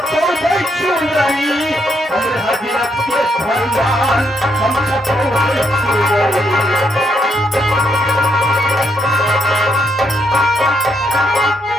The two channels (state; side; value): normal; both; correlation 0.76